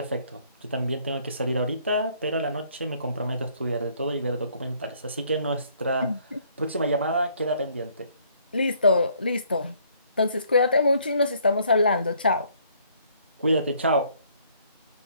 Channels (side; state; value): both; inverted; correlation -0.64